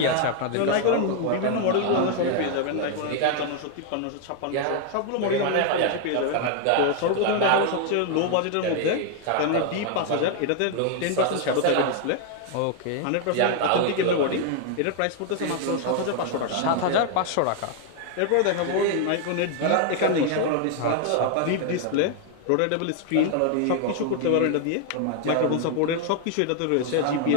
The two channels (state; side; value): different; both; correlation 0.00